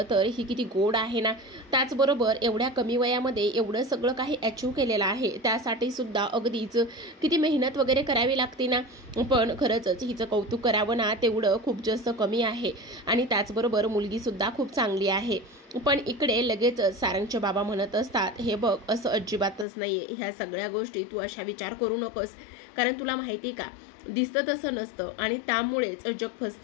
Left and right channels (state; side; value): drops out; right; at 19.7 s